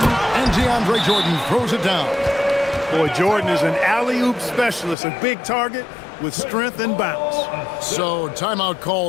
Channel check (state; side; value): drops out; right; at 5.0 s